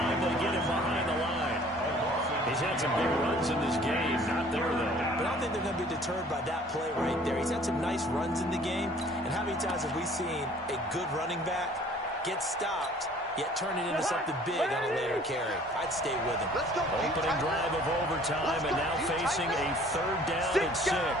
they get him behind the line. He's had some big runs in this game. Not there, though. But I don't think they're going to be deterred by that play right there. He's had some nice runs in the game. And how many times have we seen a good running back get stopped, yet turn it into something big on a later carry? I'd stay with him. Opening drive of overtime, and now facing a 3rd down and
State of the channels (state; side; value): normal; both; correlation 0.53